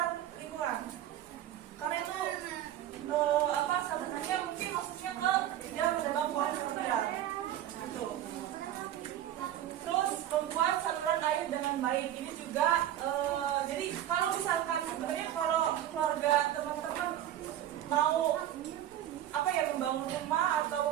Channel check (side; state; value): left; quieter; 12.0 dB